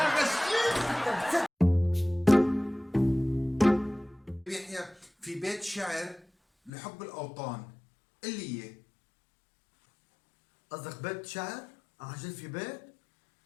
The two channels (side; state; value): right; drops out; at 6.7 s